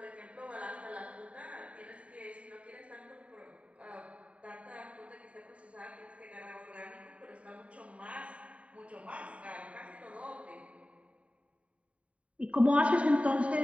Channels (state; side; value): late; left; 0.065 ms